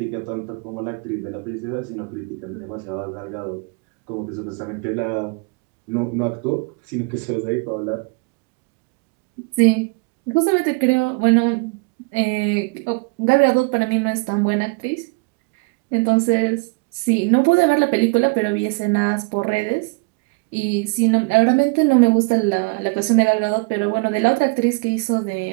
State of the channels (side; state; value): left; quieter; 30.6 dB